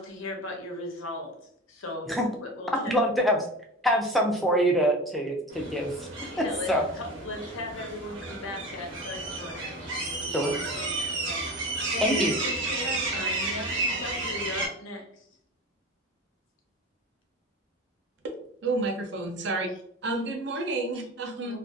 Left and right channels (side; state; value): both; normal; correlation 0.30